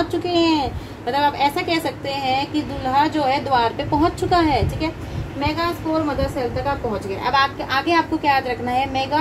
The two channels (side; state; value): both; identical; correlation 1.00